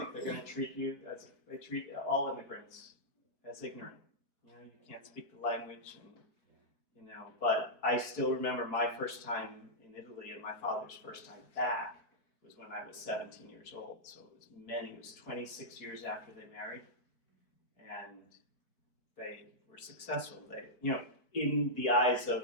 they're going to treat you as they treat all immigrants, as ignorant. You can't speak the language, and But I still remember my first time in Italy and my father's first time back was when I was 17 years old. So it was 26 years after they married, and they were successful. They, in the eyes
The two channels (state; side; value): late; right; 4.4 ms